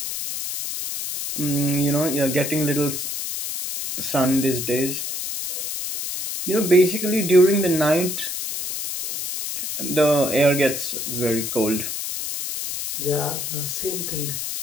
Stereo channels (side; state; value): left; noise; hiss, 4 dB below the sound